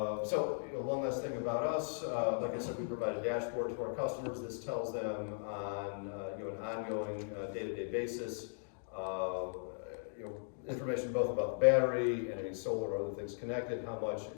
last thing about us. Like I said, we provide a dashboard to our customers. This tells them on an ongoing day-to-day basis information both about the battery and any solar or other things connected, how much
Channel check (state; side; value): silent; right; digital silence